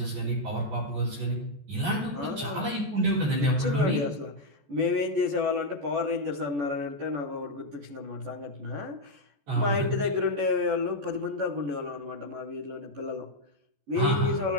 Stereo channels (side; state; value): left; late; 14 ms